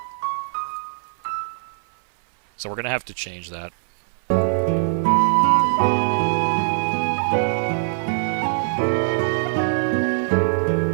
So we're going to have to change that.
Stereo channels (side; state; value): left; silent; 64 dB below the other